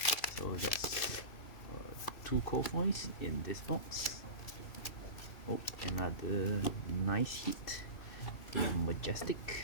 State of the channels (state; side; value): late; right; 2.6 ms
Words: So that's 2 Kofoys in this box. Oh, another nice hit. A